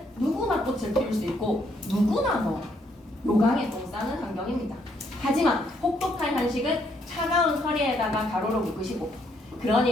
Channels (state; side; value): normal; both; correlation 0.72